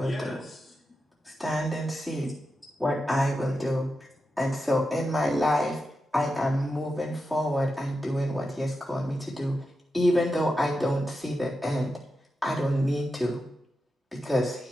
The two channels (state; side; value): normal; both; correlation 0.89